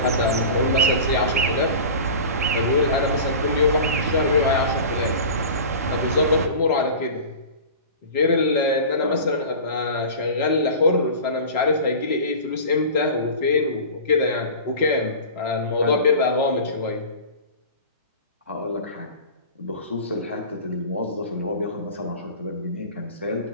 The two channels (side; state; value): both; inverted; correlation -0.36